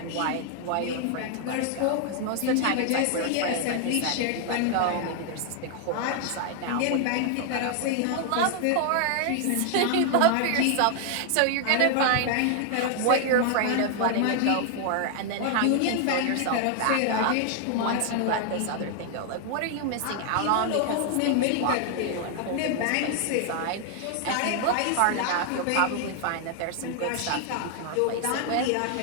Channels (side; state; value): both; different; correlation 0.00